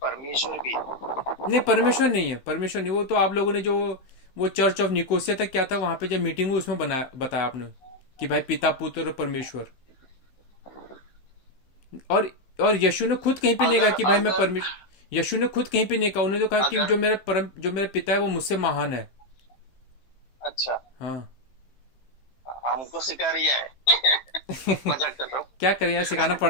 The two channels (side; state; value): right; late; 16 ms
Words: परमेश्वर भी है। नहीं, परमेश्वर नहीं है, परमेश्वर नहीं। वो तो आप लोगों ने जो वो चर्च ऑफ निकोसिया तक क्या था, वहां पे जब मीटिंग हुई उसमें बनाया, बताया आपने कि भाई पिता, पुत्र और परमेश्वर। और और यीशु ने खुद कहीं पे नहीं कहा अगर कि भाई मैं अगर परमेश्वर। यीशु ने खुद कहीं पे नहीं कहा। उन्होंने तो कहा कि अगर जो मेरा पिता है वो मुझसे महान है। अच्छा, हाँ। हमको सिखा रिया है। मजाक कर रहा हूँ। क्या करें यार, सिखाना